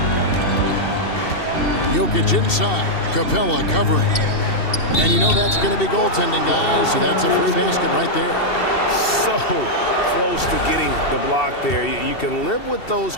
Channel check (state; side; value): late; right; 2.7 ms